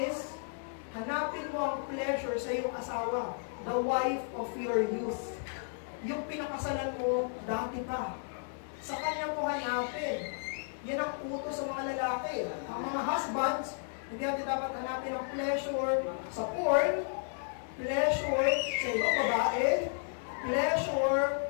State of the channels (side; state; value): right; silent; digital silence